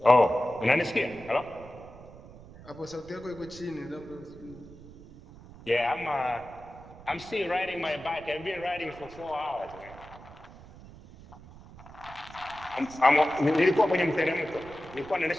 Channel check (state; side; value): noise; right; rumble, 19 dB below the sound